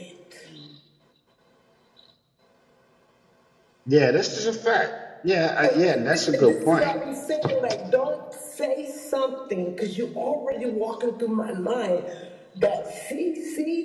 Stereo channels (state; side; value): identical; both; correlation 1.00